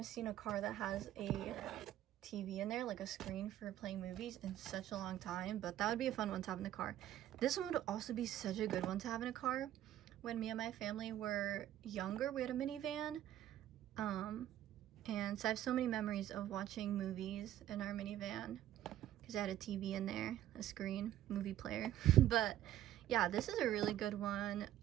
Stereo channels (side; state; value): left; quieter; 12.5 dB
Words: seen a car that has a TV in there, like a screen for playing movies, in such a long time, but that would be a fun one to have in the car. This one would also be such a good one to have in a car. When me and my family were younger, we had a minivan, and so I have so many memories of watching movies in our minivan because I had a TV in there, a screen, movie player. But yeah, this is a really good one.